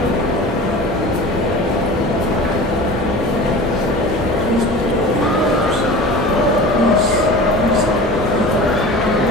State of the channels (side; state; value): both; normal; correlation 0.36